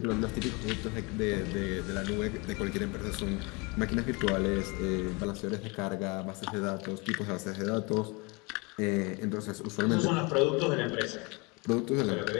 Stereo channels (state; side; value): quieter; right; 28.2 dB